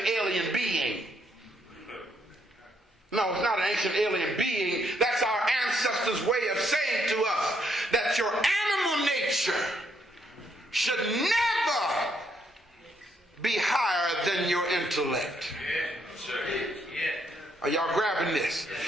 alien being. No, it's not an ancient alien being. That's our ancestors' way of saying to us that your animal nature should never be higher than your intellect. Are y'all grabbing this?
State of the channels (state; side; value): normal; both; correlation 0.74